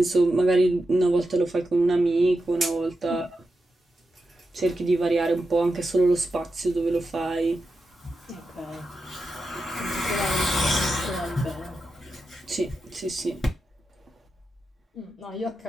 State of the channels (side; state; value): both; normal; correlation 0.89